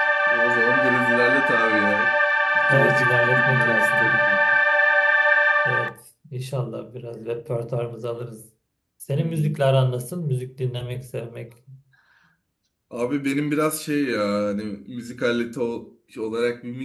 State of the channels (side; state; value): both; identical; correlation 1.00